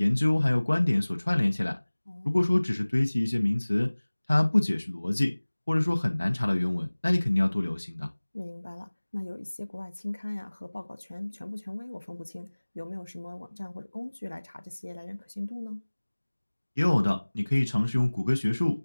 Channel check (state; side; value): inverted; both; correlation -1.00